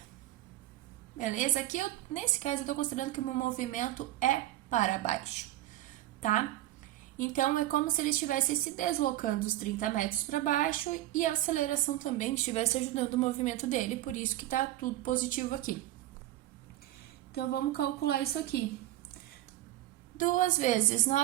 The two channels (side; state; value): left; quieter; 15.0 dB